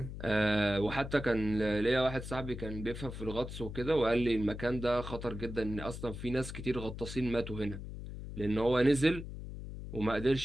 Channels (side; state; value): left; noise; hum, 9 dB below the sound